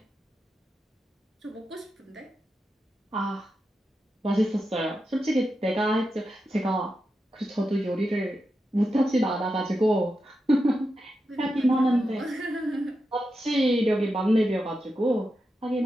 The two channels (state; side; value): normal; both; correlation 0.88